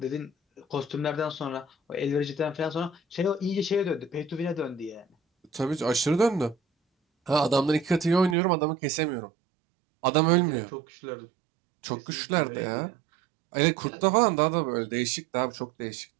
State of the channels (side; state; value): left; drops out; at 8.3 s